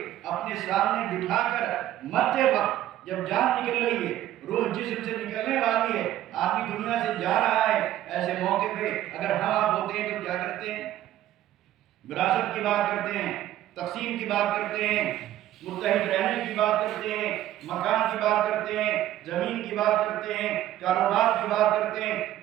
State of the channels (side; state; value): left; quieter; 13.3 dB